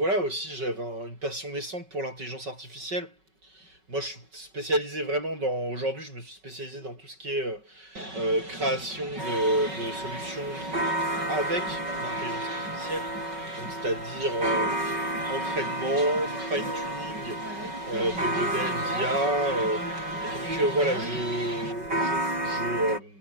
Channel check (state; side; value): late; left; 5.3 ms